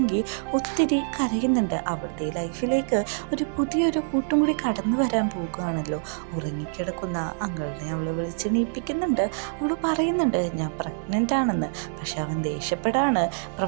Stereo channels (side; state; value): left; silent; digital silence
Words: ഒത്തിരി കരയുന്നുണ്ട്. അവളുടെ ലൈഫിലേക്ക് ഒരു പുതിയൊരു കൂട്ടും കൂടി കടന്നു വരാൻ പോകുകയാണല്ലോ. ഉറങ്ങിക്കിടക്കുന്ന അങ്കിളിനെ അവൾ വിളിച്ചെണീപ്പിക്കുന്നുണ്ട്. അവൾ പറയുന്നുണ്ട്, ഞാൻ പ്രഗ്നൻ്റ് ആണെന്ന്. പക്ഷെ അവൻ ദേഷ്യപ്പെടാണ്.